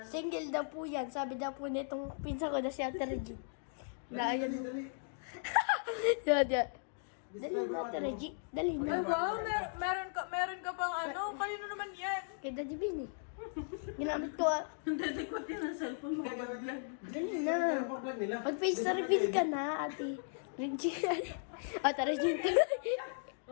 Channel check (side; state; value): right; silent; digital silence